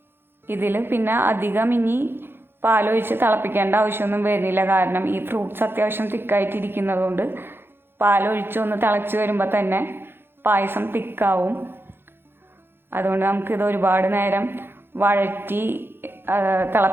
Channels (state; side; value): late; left; 0.10 ms